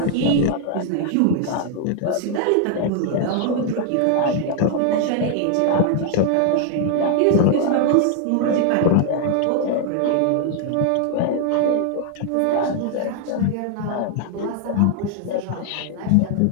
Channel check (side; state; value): both; different; correlation 0.00